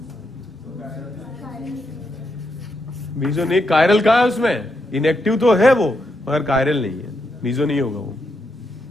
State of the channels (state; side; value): normal; both; correlation 0.81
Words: मीजो नहीं, कायरल कहाँ है उसमें? इनएक्टिव तो है वो, मगर कायरल नहीं है, मीजो नहीं होगा वो।